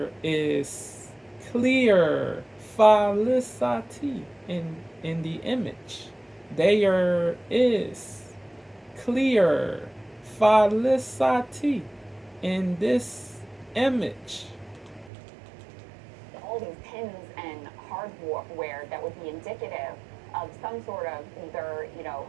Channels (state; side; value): drops out; left; at 15.1 s